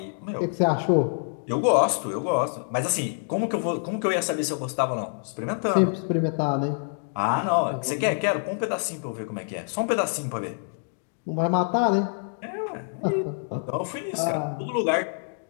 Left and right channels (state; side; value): silent; right; digital silence